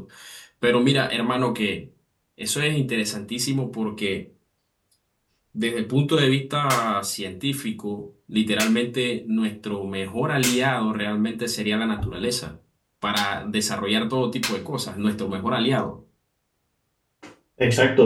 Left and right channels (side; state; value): both; identical; correlation 1.00